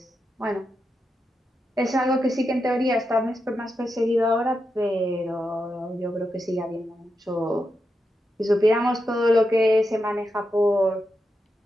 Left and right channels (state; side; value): normal; both; correlation 0.86